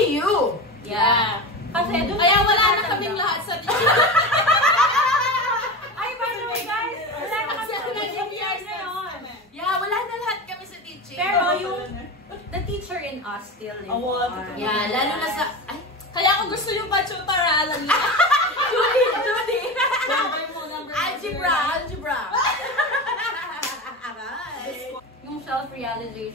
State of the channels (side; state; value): both; normal; correlation 0.24